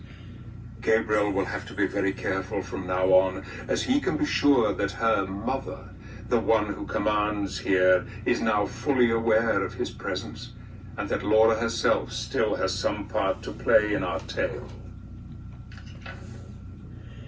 Gabriel will have to be very careful from now on, as he can be sure that her mother, the one who commands here, is now fully aware of his presence, and that Laura herself still has some part to play in our tale.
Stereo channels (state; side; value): identical; both; correlation 1.00